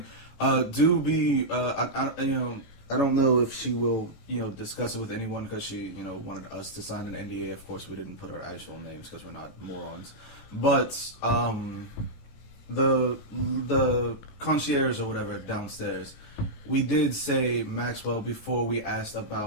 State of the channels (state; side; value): late; right; 18 ms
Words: Do be. I don't know if she will, discuss it with anyone because she, wanted us to sign an NDA. Of course, we didn't put our actual names because we're not morons. But the concierge or whatever downstairs, we did say Maxwell before we asked